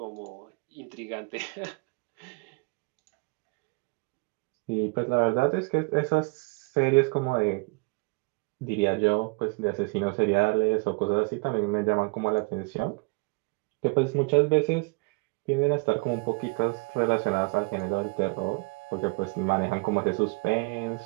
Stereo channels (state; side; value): quieter; left; 29.2 dB